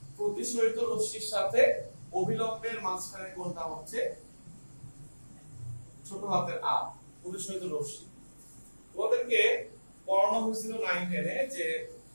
প্রতিসরিত রশ্মির সাথে অভিলম্বের মাঝখানের কোণটা হচ্ছে ছোট হাতের আর, প্রতিসরিত রশ্মি। তোমাদেরকে পড়ানো হয়েছিল 9 10 এ যে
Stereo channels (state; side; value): inverted; both; correlation -1.00